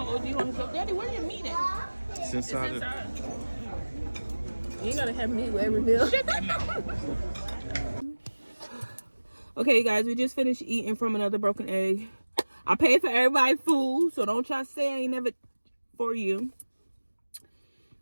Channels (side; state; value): both; inverted; correlation -1.00